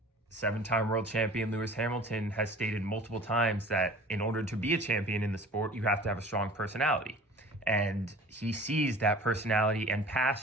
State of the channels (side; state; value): both; normal; correlation 0.44